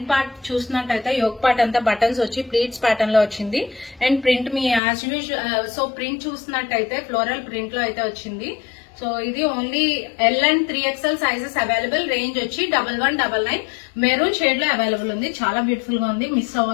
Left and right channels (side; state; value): right; drops out; at 4.8 s